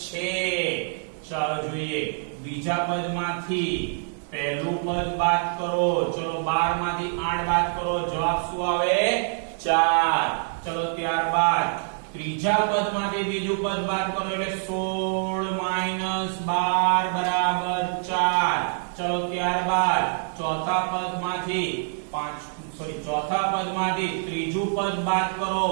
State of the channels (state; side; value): silent; left; 61 dB below the other